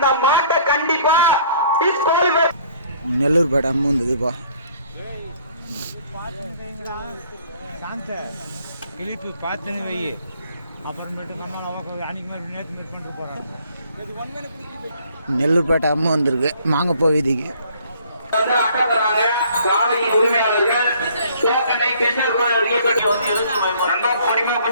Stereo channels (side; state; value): both; inverted; correlation -0.59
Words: மாட்டை கண்டிப்பா நெல்லூர் பேட்டை அம்மா வந்ததுப்பா. கிளிப்பு பார்த்துன்னு வை. அப்புறமேட்டு நம்ம அன்னைக்கு மாதிரி நேற்று மாதிரி பண்ணிட்டு போகிறாங்க. நெல்லூர் பேட்டை அம்மா வந்திருக்கு மாங்கப்போ வீதிக்கு.